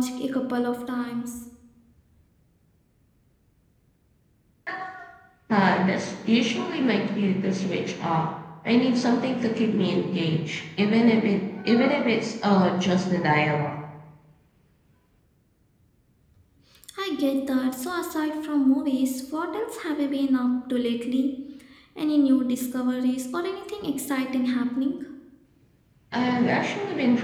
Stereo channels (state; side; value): identical; both; correlation 1.00